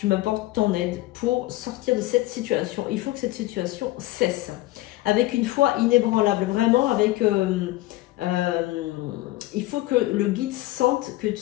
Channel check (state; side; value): quieter; right; 17.7 dB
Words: m'apportes ton aide pour sortir de cette situation. Il faut que cette situation cesse. Avec une foi inébranlable, vraiment avec... il faut que le guide sente que